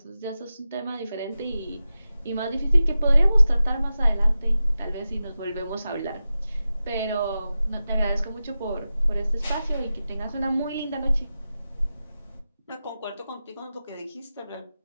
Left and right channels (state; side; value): inverted; both; correlation -0.93